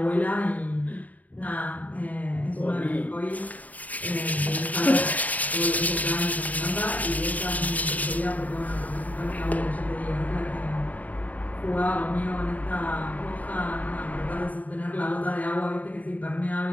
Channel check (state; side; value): late; right; 0.074 ms